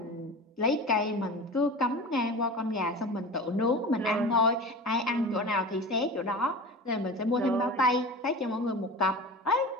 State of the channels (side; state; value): both; normal; correlation 0.33